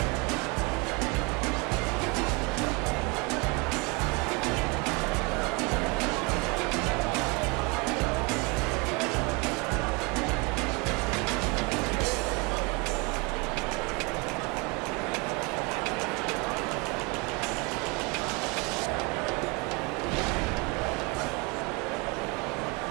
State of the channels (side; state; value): left; quieter; 29.1 dB